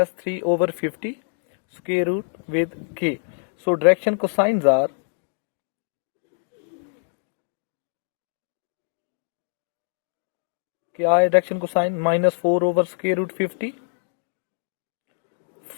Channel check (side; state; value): right; silent; digital silence